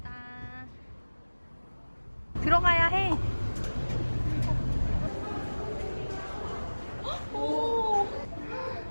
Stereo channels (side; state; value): both; inverted; correlation -1.00